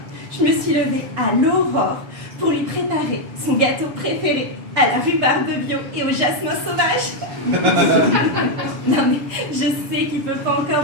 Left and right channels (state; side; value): late; left; 7.4 ms